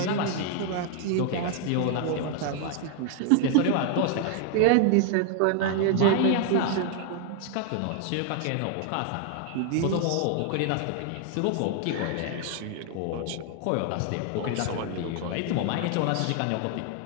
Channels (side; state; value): both; different; correlation 0.00